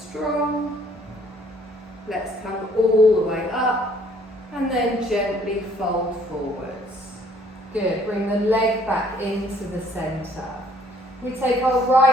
Let's come all the way up and then gently fold forwards. Good, bring the leg back into the centre. We take our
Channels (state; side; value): normal; both; correlation 0.61